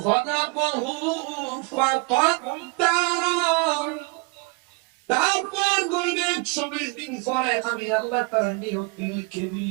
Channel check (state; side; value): quieter; left; 29.9 dB